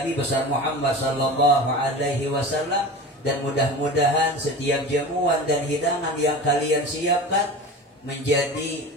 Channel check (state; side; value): normal; both; correlation 0.32